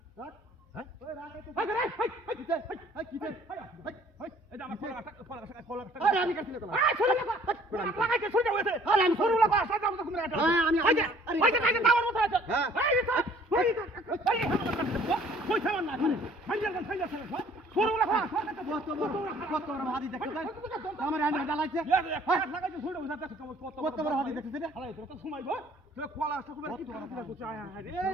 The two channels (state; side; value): normal; both; correlation 0.56